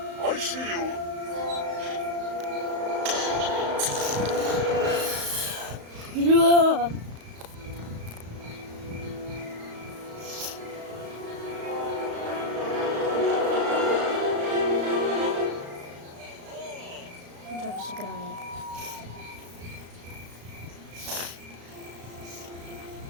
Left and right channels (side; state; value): left; late; 35 ms